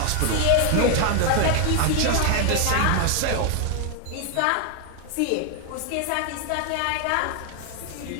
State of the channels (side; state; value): both; different; correlation 0.00